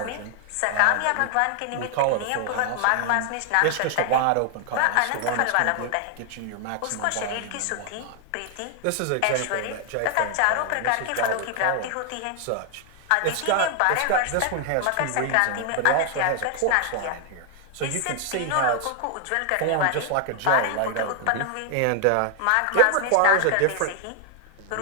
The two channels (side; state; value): both; different; correlation 0.00